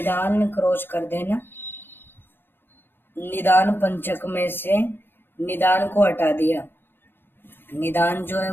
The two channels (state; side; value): late; right; 0.10 ms